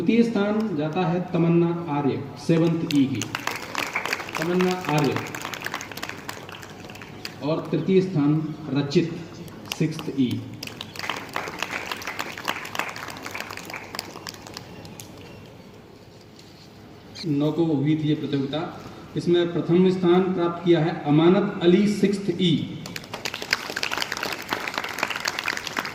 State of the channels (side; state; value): both; identical; correlation 1.00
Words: स्थान जाता है तमन्ना आर्य 7th E की, तमन्ना आर्य। और तृतीय स्थान रचित 6th E। नौ को हुई थी ये प्रतियोगिता। इसमें प्रथम स्थान प्राप्त किया है अमानत अली 6th E,